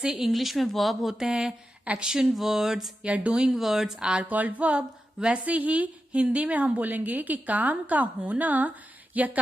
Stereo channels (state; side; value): normal; both; correlation 0.90